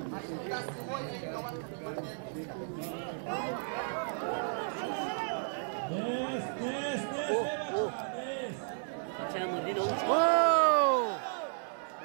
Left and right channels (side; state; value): left; silent; digital silence